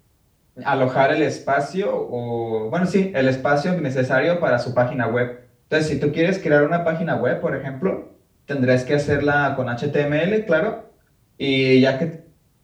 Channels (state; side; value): identical; both; correlation 1.00